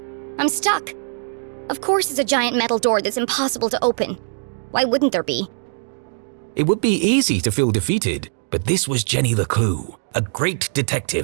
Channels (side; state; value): left; silent; digital silence